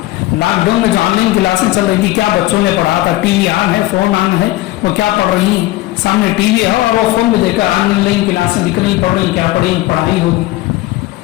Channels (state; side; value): quieter; right; 17.3 dB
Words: لاک ڈاؤن میں جو آن لائن کلاسیں چل رہی تھی، کیا بچوں نے پڑھا تھا، ٹی وی آن ہے، فون آن ہے، وہ کیا پڑھ رہی ہیں، سامنے ٹی وی ہے اور وہ فون میں دیکھ کر آن لائن کلاسیں دکھ رہی، پڑھ رہی، کیا پڑھی، پڑھائی ہوگی۔